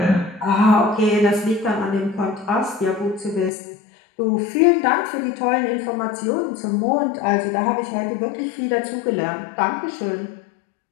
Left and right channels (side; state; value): right; drops out; at 3.5 s